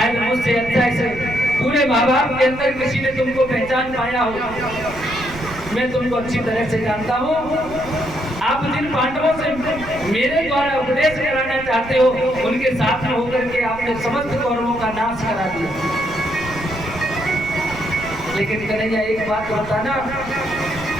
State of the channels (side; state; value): right; noise; rumble, 15 dB below the sound